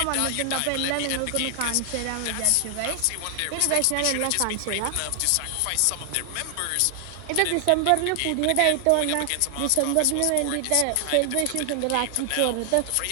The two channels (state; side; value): different; both; correlation 0.00